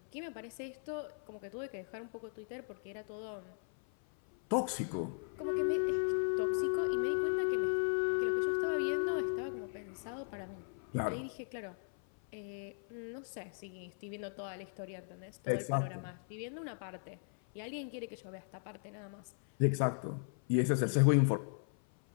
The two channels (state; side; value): silent; right; 53 dB below the other